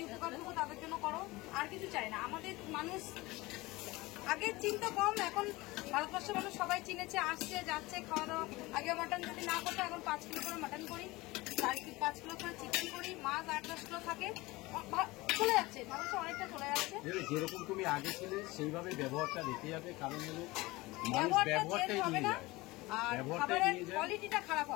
উপকারটুকু তাদের জন্য করো, আর কিছু চাই না। আমাদের মানুষ আগের চিন্তা কম, এখন ভারতবর্ষের মানুষ সবাই চিনেছে, আসছে যাচ্ছে খাওয়া দাওয়া। আগে মাটন যদি না করতো, এখন 5 কিলো করে মাটন করি, 5 কিলো করে চিকেন করি, মাছ 8-10 কিলো থাকে, চলে যাচ্ছে, মানুষ অনেকটা চলে যাচ্ছে। যেরকম তুমি আগে ছিলে সেইভাবে ব্যবহারটা রেখে যাবে, কারণ হলো ব্যবহারটা চেঞ্জ হবে না, আর খাবারের কোয়ালিটিটা খারাপ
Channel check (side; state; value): right; quieter; 21.2 dB